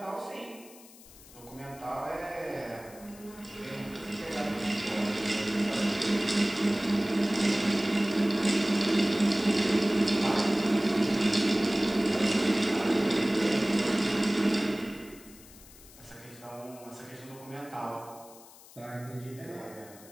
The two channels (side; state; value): left; noise; hiss, 21 dB below the sound